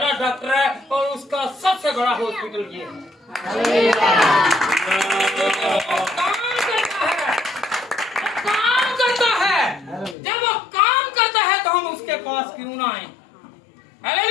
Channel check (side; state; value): right; drops out; at 10.2 s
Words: डॉक्टर है और उसका सबसे बड़ा हॉस्पिटल ये है। काम करता है। जब वो काम करता है तो हम उसके पास क्यों ना आए?